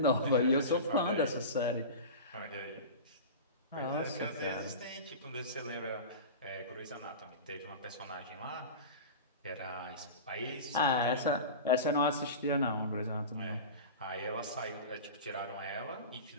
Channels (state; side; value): inverted; both; correlation -0.30